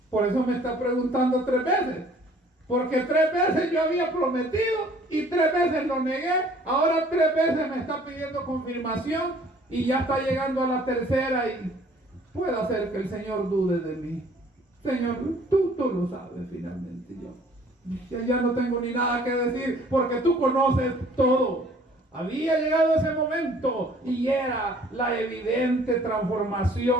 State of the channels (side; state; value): both; normal; correlation 0.56